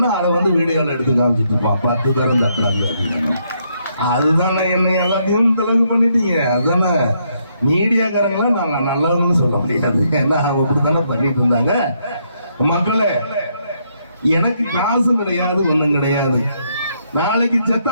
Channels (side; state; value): both; inverted; correlation -0.75